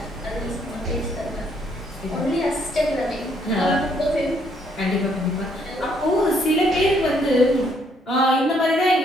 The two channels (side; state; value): both; normal; correlation 0.69